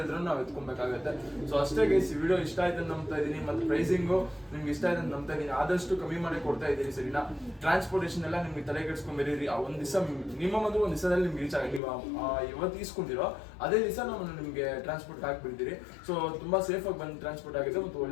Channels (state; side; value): drops out; right; at 11.8 s